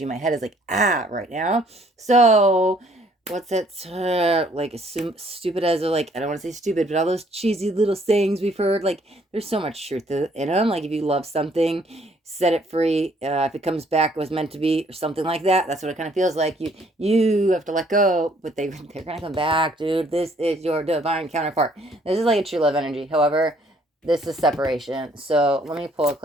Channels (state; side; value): normal; both; correlation 0.63